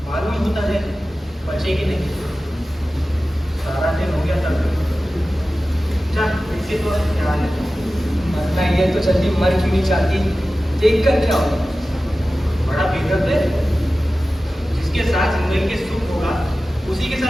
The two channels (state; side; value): normal; both; correlation 0.95